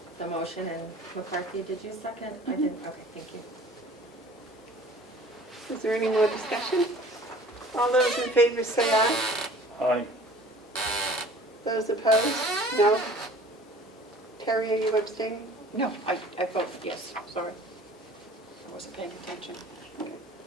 the motion, and McCarthy, did you second? I didn't, okay, thank you. Is there any more discussion? All those in favor say aye. Aye. Those opposed? No. Terry, are you abstaining? No, I vote yes, sorry. I wasn't paying attention.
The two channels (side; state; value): both; normal; correlation 0.48